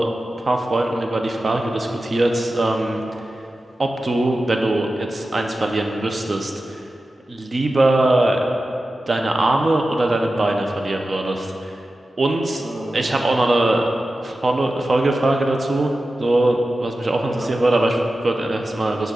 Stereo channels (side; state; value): both; normal; correlation 0.93